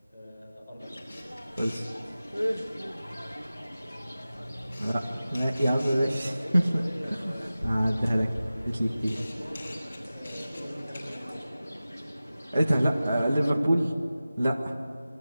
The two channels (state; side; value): inverted; both; correlation -0.96